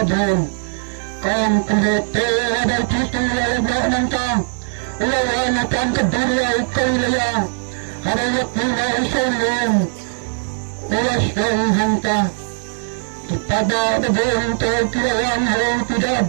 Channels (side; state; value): left; silent; digital silence